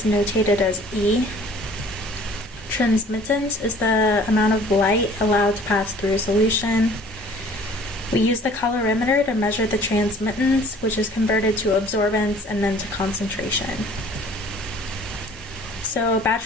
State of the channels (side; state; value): both; normal; correlation 0.51